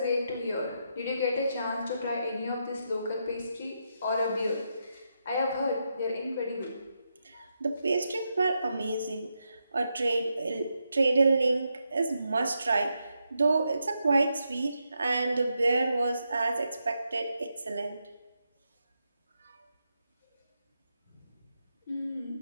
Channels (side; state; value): both; inverted; correlation -0.83